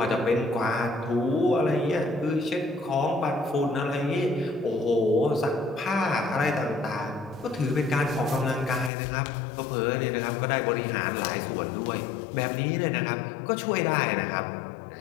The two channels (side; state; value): right; drops out; at 8.9 s